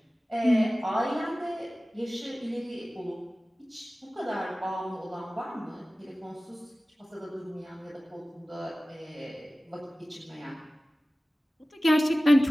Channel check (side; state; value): both; normal; correlation 0.97